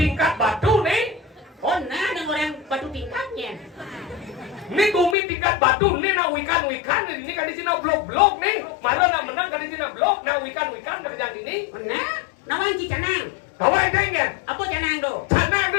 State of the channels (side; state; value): right; drops out; at 5.2 s